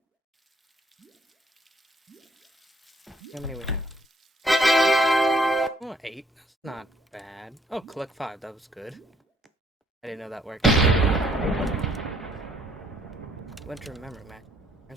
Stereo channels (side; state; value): both; normal; correlation 0.66